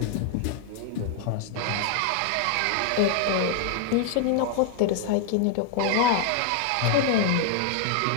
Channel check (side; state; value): both; different; correlation 0.00